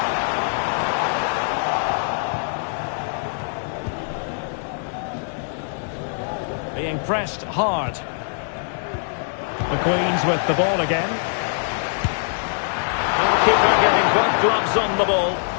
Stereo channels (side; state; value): right; silent; 64 dB below the other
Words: Being pressed hard. The Queens with the ball again. Goalkeeper getting both gloves on the ball.